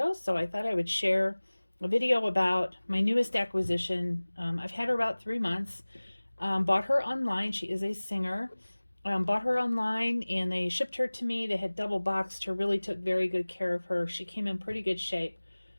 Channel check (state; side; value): inverted; both; correlation -1.00